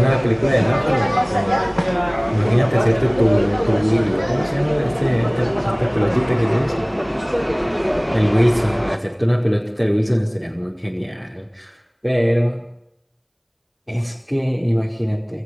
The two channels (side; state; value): both; identical; correlation 1.00